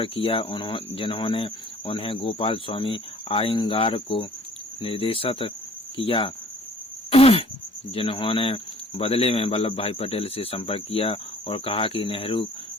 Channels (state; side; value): normal; both; correlation 0.53